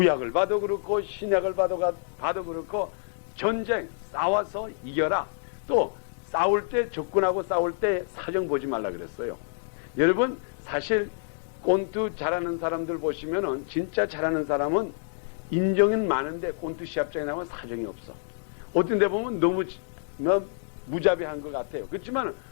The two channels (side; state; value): right; silent; digital silence